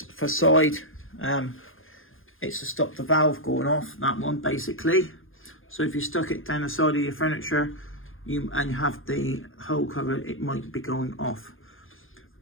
for side. It's to stop the valve going off, that one basically. So if you stuck it down the side of your furniture and you have the hole covered, it might be going off.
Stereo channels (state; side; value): late; right; 0.59 ms